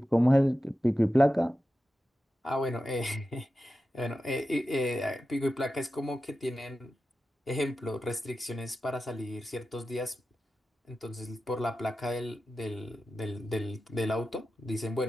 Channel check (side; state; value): both; normal; correlation 0.92